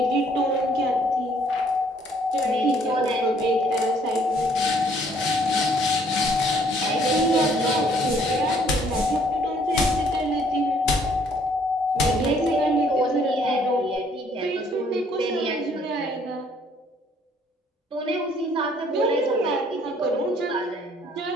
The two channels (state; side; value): normal; both; correlation 0.63